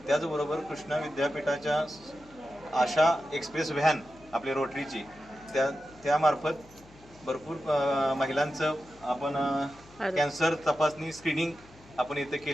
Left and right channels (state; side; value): noise; left; hum, 24 dB below the sound